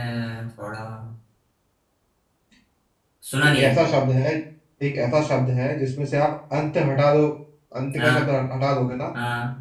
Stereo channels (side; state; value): both; identical; correlation 1.00